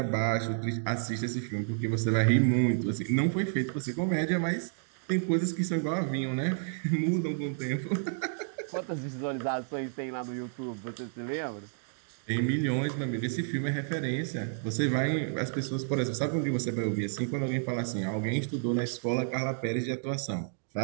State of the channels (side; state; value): left; silent; digital silence